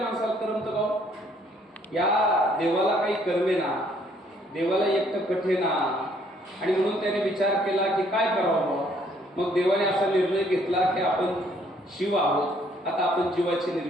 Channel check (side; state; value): both; normal; correlation 0.64